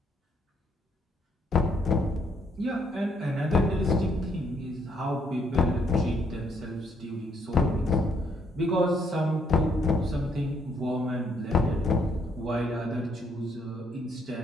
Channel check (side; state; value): both; normal; correlation 0.70